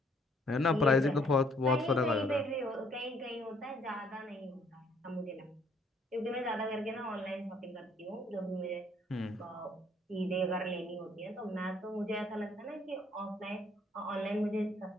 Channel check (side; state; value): both; normal; correlation 0.64